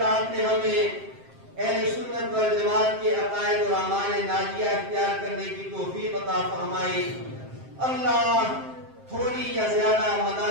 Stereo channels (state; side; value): late; left; 7.6 ms